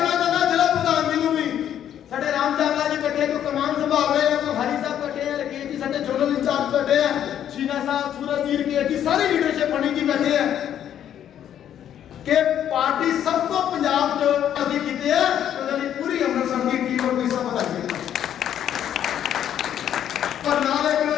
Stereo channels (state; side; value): quieter; right; 10.2 dB